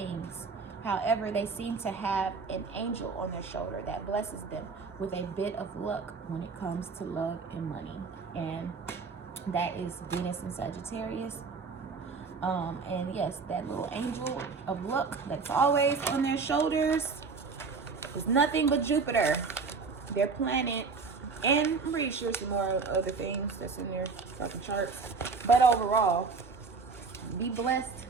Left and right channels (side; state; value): left; quieter; 4.8 dB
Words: However, they seem to have an angel on their shoulder that blesses them with a bit of luck when it comes to love and money. And that is Venus in Sagittarius. And yes, that little angel of luck that's always on their shoulders is nothing but Jupiter, their planet, and I'm pretty sure some more other things that's in their fucking charts. But overall, be blessed